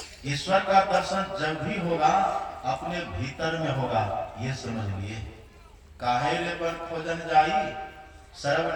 ईश्वर का दर्शन जब भी होगा अपने भीतर में होगा, ये समझ लिए। काहे रे बन खोजन जाई,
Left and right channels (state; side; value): identical; both; correlation 1.00